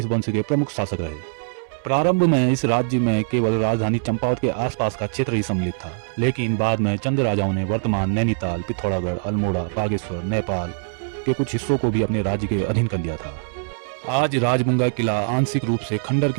वंश के प्रमुख शासक रहे। प्रारंभ में इस राज्य में केवल राजधानी चंपावत के आसपास का क्षेत्र ही सम्मिलित था, लेकिन बाद में चंद राजाओं ने वर्तमान नैनीताल, पिथौरागढ़, अल्मोड़ा, बागेश्वर, नेपाल के कुछ हिस्सों को भी अपने राज्य के अधीन कर लिया था। आज राजबुंगा किला आंशिक रूप से खंडर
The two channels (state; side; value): silent; left; 62 dB below the other